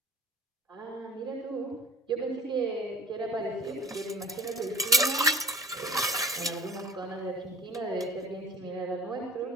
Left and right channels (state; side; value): normal; both; correlation 0.45